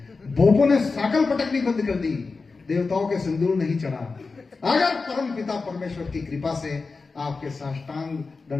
बोपो ने साकल पटकनी बंद कर दी, देवताओं के सिंदूर नहीं चढ़ा। अगर परम पिता परमेश्वर की कृपा से आपके साष्टांग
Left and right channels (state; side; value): quieter; right; 4.2 dB